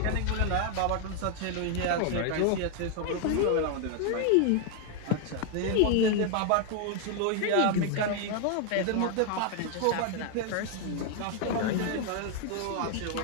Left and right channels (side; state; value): both; different; correlation 0.00